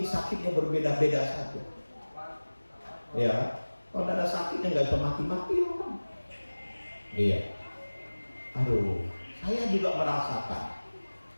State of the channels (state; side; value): inverted; both; correlation -1.00